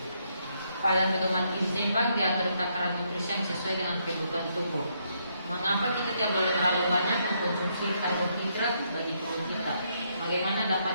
pada pedoman gizi seimbang diatur takaran nutrisi yang sesuai dengan kebutuhan tubuh. Mengapa kita tidak boleh terlalu banyak mengkonsumsi karbohidrat bagi tubuh kita? Bagaimana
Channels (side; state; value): both; inverted; correlation -0.75